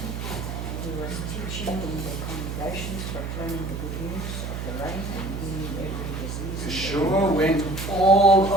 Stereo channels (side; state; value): right; noise; hum, 5 dB below the sound